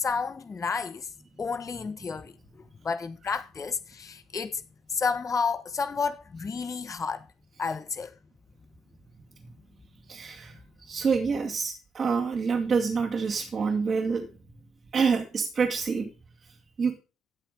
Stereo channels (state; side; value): normal; both; correlation 0.79